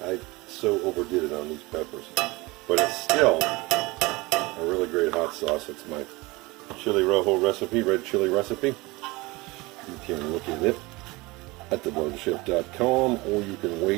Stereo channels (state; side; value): quieter; left; 23.0 dB